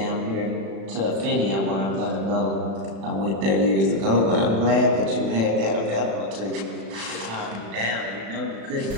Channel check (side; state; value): left; late; 36 ms